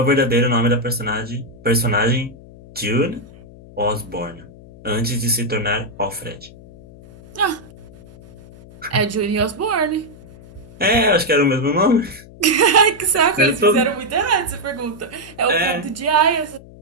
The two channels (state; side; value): noise; left; hum, 20 dB below the sound